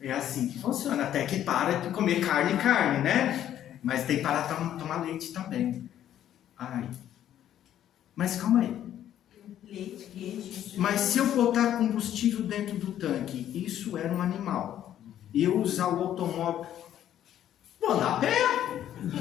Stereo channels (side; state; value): right; quieter; 11.2 dB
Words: É assim que funciona, até que para de comer carne, né? Mas tem que parar de tomar leite também. Ai. Mas calma aí. Leite, queijo. Mas se eu botar combustível dentro do tanque, isso era um animal. E eu usar o automóvel, vou andar a pé.